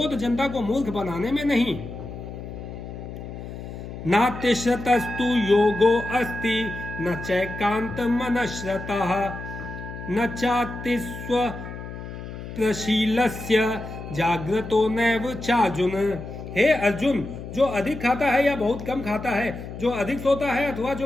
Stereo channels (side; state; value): left; noise; hum, 10 dB below the sound